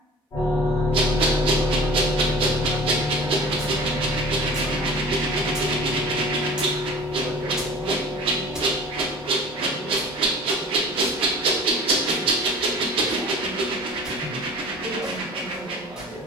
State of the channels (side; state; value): both; normal; correlation 0.42